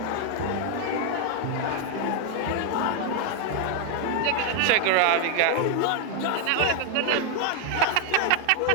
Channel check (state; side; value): different; both; correlation 0.01